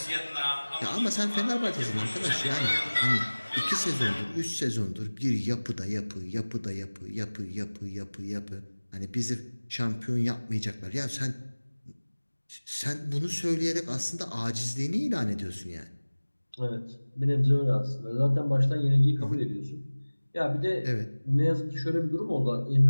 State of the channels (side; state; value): both; inverted; correlation -1.00